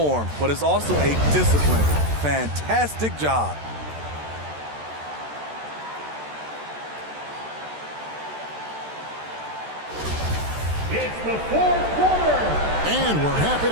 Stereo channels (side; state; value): left; late; 13 ms